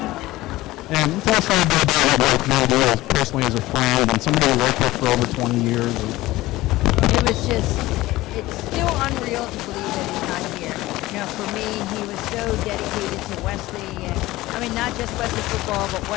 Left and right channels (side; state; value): right; quieter; 17.9 dB